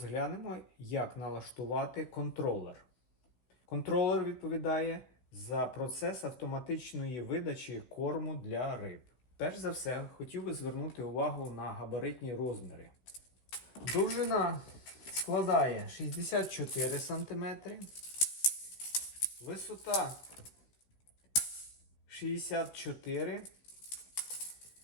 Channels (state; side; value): late; right; 15 ms